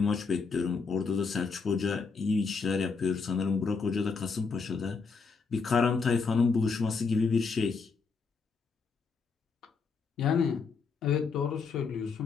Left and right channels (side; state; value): right; quieter; 5.0 dB